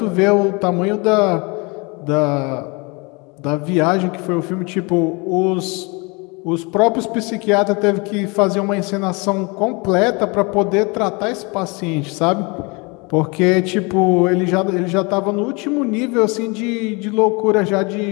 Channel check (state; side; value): quieter; right; 28.8 dB